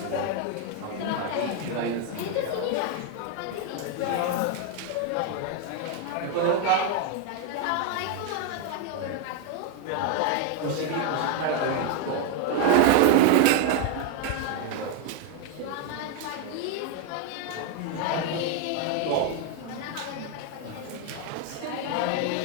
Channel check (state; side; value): different; both; correlation 0.01